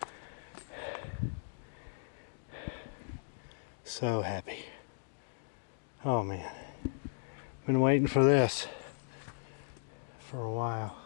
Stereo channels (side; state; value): right; silent; digital silence